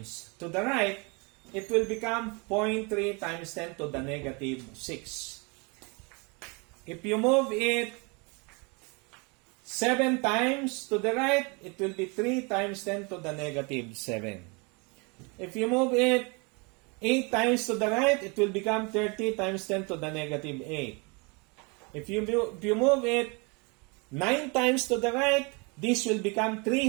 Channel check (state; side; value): quieter; left; 30.6 dB